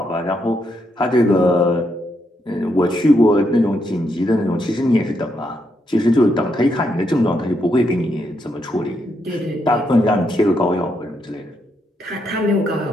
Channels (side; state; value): both; normal; correlation 0.79